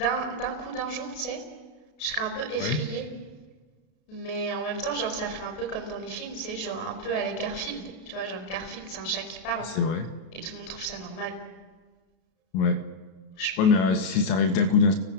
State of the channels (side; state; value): right; late; 32 ms